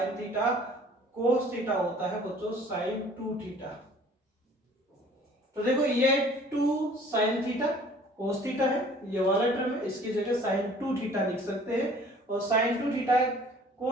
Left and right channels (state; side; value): normal; both; correlation 0.52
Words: थीटा cos थीटा होता है बच्चों sin 2 थीटा। तो देखो ये 2 sin थीटा cos थीटा है, ये वाला टर्म है, इसकी जगह sin 2 थीटा लिख सकते हैं, और sin 2 थीटा